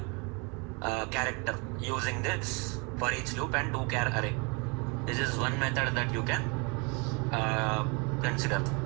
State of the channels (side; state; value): left; quieter; 31.2 dB